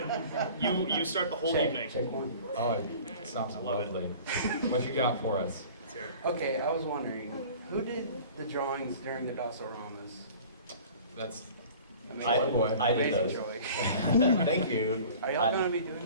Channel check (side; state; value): both; inverted; correlation -0.44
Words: You start the whole evening. Check. Oh, it sounds love it. lovely. What you got for us? Let's hear it. Okay, I was wondering, who did the drawings during the Dosoramas? That's I did Amazing those. Joy. Thank you. Are y'all gonna be